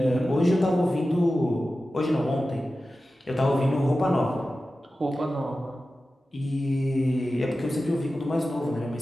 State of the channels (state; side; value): normal; both; correlation 0.94